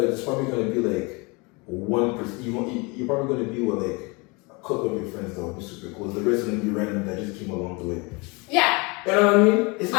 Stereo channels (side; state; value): right; quieter; 28.1 dB